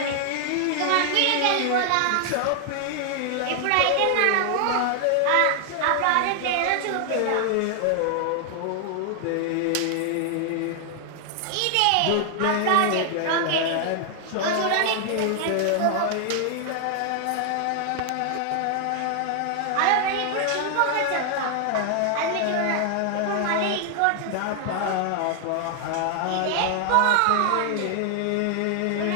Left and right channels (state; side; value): different; both; correlation 0.00